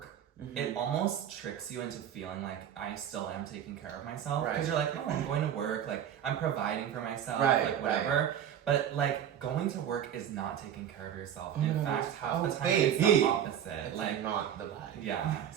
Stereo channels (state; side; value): quieter; left; 9.6 dB